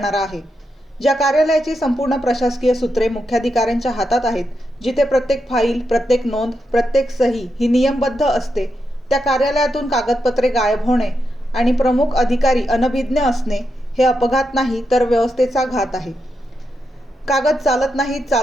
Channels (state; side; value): normal; both; correlation 0.85